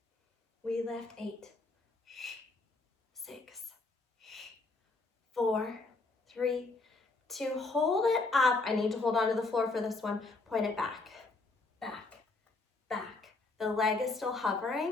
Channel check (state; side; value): quieter; right; 3.5 dB